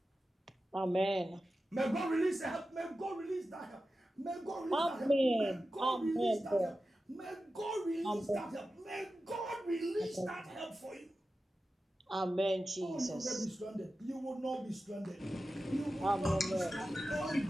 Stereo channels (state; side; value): normal; both; correlation 0.93